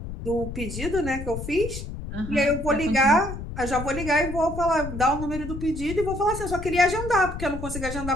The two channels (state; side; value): noise; left; rumble, 8 dB below the sound